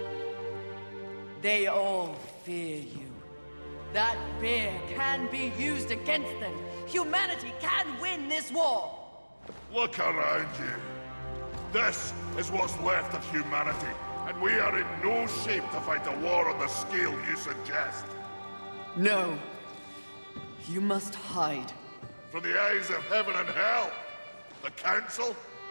They all fear you. That fear can be used against them. Humanity can win this war. Look around you. This is what's left of humanity, and we are in no shape to fight a war on the scale you suggest. No. You must hide. From the eyes of heaven and hell. The Council?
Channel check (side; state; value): both; inverted; correlation -1.00